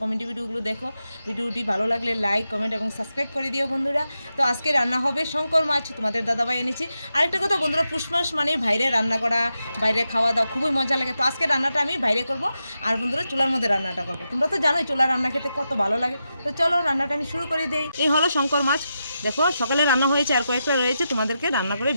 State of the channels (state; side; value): inverted; both; correlation -0.88